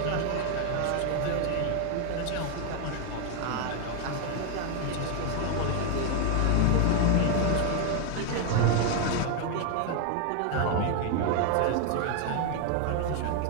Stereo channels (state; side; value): different; both; correlation 0.00